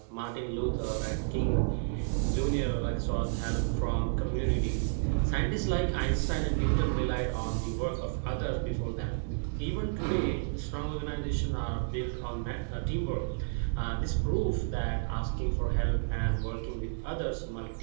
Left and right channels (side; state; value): left; silent; digital silence